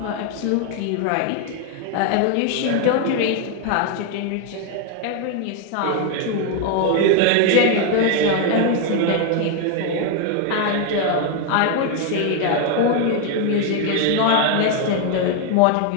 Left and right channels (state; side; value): different; both; correlation 0.01